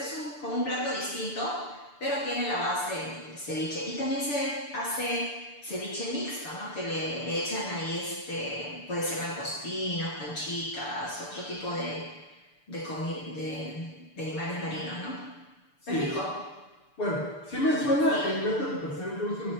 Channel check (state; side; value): late; right; 6.8 ms